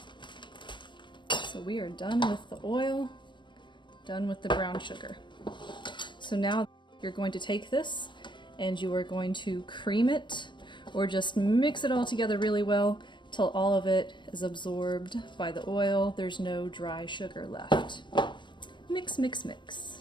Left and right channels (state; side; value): late; right; 0.22 ms